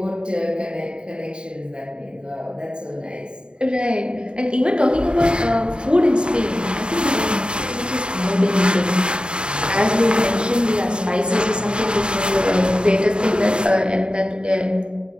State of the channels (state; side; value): late; left; 0.051 ms